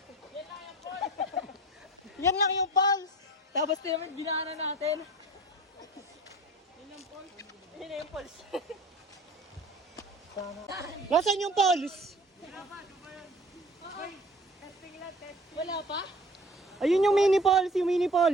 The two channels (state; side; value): normal; both; correlation 0.43